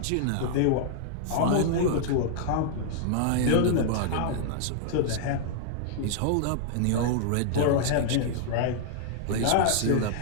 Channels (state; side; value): different; both; correlation -0.01